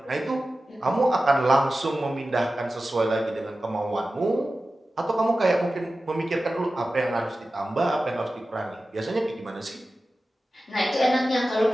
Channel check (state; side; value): normal; both; correlation 0.95